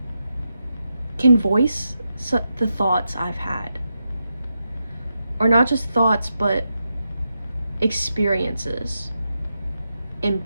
voice the thoughts I've had. Or not just thoughts, but experiences, and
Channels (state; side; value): inverted; both; correlation -0.87